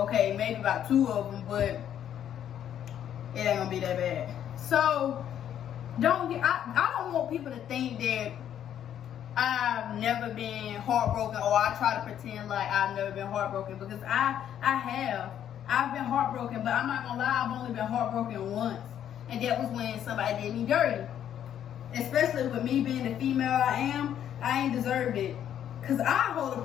maybe about 2 of them, but it ain't gonna be that bad. So I don't want people to think that I've never been heartbroken, or I try to pretend like I've never been heartbroken, because I have. I've been heartbroken, but I'm not gonna lie, I've only been heartbroken once. And that was when somebody did me dirty. Especially with me being the female I am, I ain't deserved it. Cause I hold a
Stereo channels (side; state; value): right; quieter; 10.1 dB